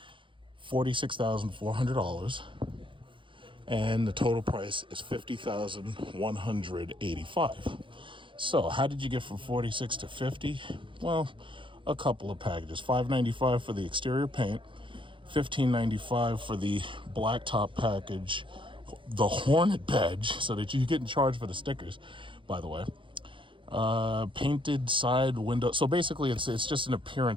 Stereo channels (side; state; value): left; late; 0.25 ms